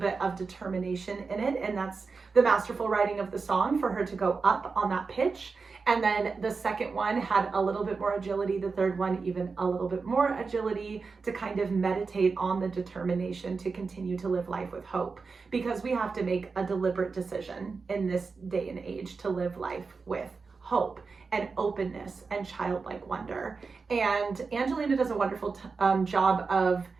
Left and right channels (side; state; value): left; quieter; 4.6 dB